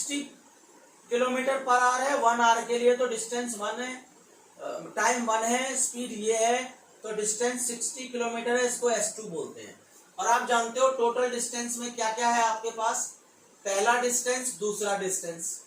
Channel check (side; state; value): both; identical; correlation 1.00